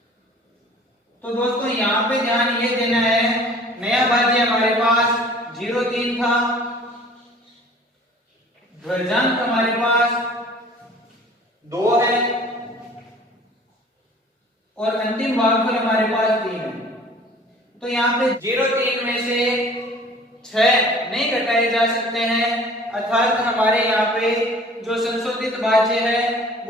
तो दोस्तों यहाँ पे ध्यान ये देना है, नया भाज्य हमारे पास 0-3 था, ध्वजांक हमारे पास 2 है और अंतिम भागफल हमारे पास 3 है। तो यहाँ पे 0-3 में से 6 नहीं घटाए जा सकते हैं, अर्थात हमारे यहाँ पे जो संशोधित भाज्य है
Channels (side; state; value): both; normal; correlation 0.49